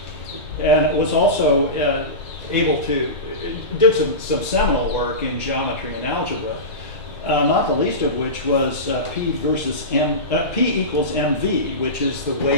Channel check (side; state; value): both; normal; correlation -0.19